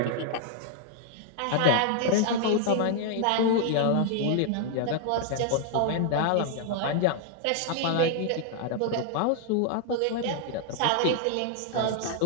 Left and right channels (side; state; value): both; different; correlation 0.00